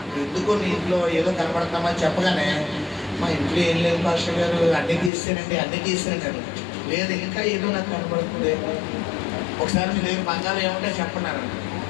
ఎందుకో నీ ఇంట్లో ఏదో కనబడుతున్నామని చెప్పగానే, మా ఇంట్లో ఏం లేదు పాస్టర్ గారు, అన్నీ తీసేనండి. లేదు, ఇంకా ఏదో నాకు కనబడుతుంది. ఒకసారి మీ దగ్గర బంగారం ఏమంటే చెప్పన్నారు.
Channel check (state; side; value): drops out; right; at 5.1 s